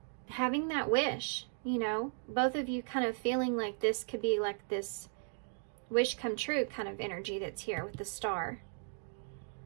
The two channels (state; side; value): silent; left; digital silence